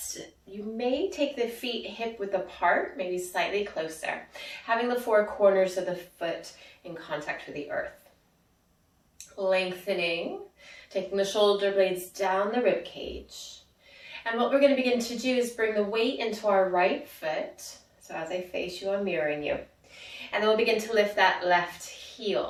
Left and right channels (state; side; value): identical; both; correlation 1.00